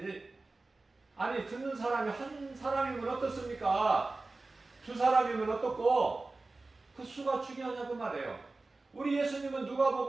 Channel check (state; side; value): quieter; left; 3.4 dB